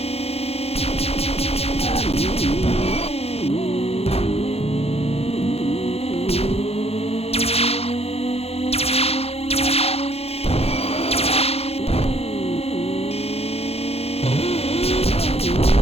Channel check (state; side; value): late; right; 0.29 ms